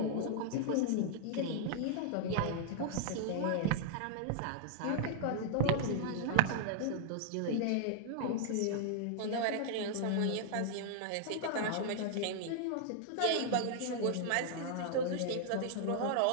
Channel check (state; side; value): different; both; correlation -0.01